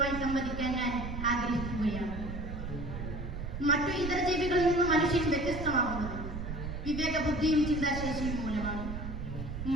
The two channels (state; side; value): noise; right; rumble, 6 dB below the sound